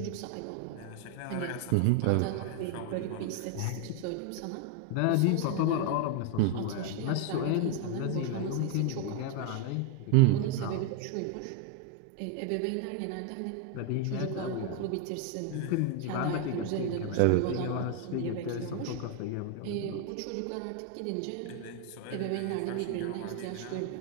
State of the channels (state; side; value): different; both; correlation 0.01